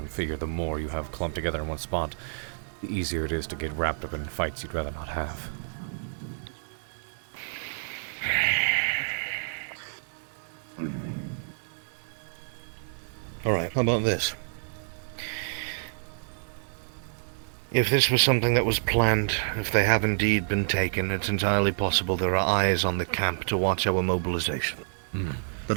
figure the more you have clumped together in one spot, the easier it is to get wrapped up in fights you'd rather not have. Alright, how about this? If this was something that was planned, if they have indeed been taken, it's entirely possible there are eyes on the camp to watch our mobilization.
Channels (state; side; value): silent; left; digital silence